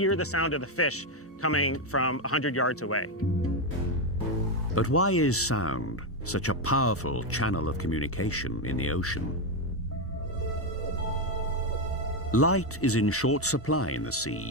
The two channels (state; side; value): normal; both; correlation 0.06